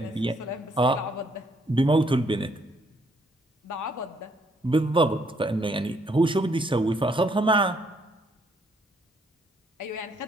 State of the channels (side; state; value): both; normal; correlation 0.70